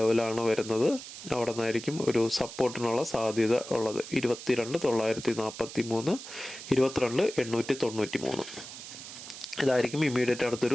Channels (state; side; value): noise; right; hiss, 12 dB below the sound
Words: വരുന്നത്. അവിടെ നിന്നായിരിക്കും ഒരു സപ്പോർട്ടിനുള്ള സാധ്യത ഉള്ളത്. 22,943 22,893 ഇതായിരിക്കും ഇമ്മീഡിയറ്റ്